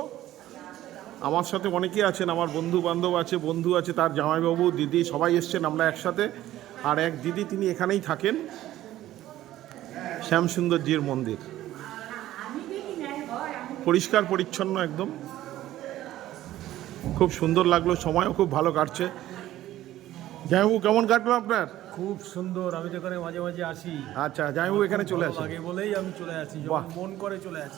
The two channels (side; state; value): left; quieter; 14.2 dB